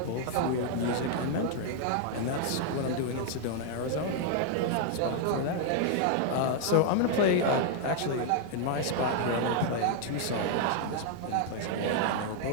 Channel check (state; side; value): different; both; correlation 0.00